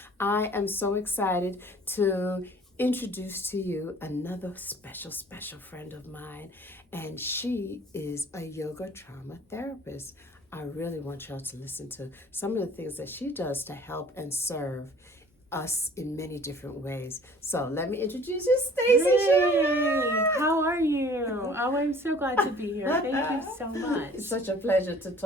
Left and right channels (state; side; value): normal; both; correlation 0.51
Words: I am so excited to introduce to you another special friend of mine, and she is a yoga trauma therapist. I really want y'all to listen to some of the things that she does to help and serve us in many different ways. So let me introduce you, Stacy. Hey, how are you? Oh, I'm so glad to be here. Thank you so much. It's such a pleasure to